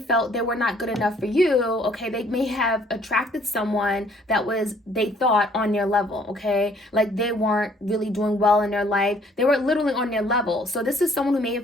they were not good enough for you, okay, they may have attracted someone that was, they thought, on their level, okay, like they weren't really doing well in their life. They were literally on their level. So this is someone who may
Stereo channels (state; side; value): normal; both; correlation 0.61